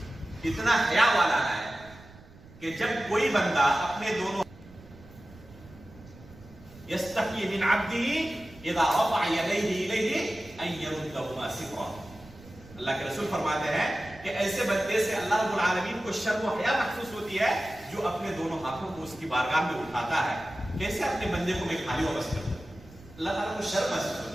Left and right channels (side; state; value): right; noise; rumble, 21 dB below the sound